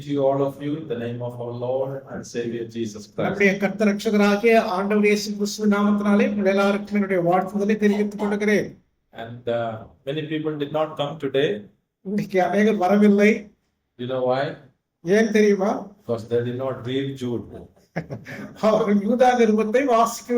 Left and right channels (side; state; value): both; identical; correlation 1.00